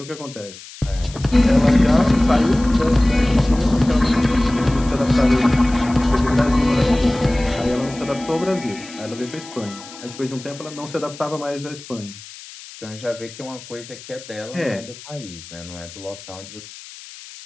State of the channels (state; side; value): noise; left; hiss, 17 dB below the sound